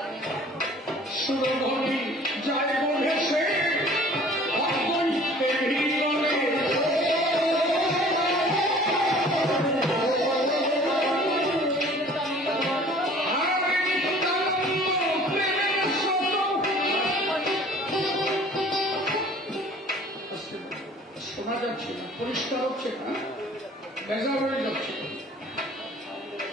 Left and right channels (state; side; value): normal; both; correlation 0.50